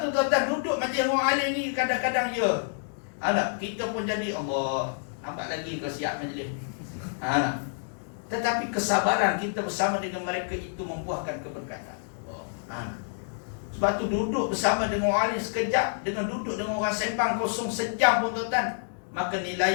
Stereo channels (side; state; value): right; silent; digital silence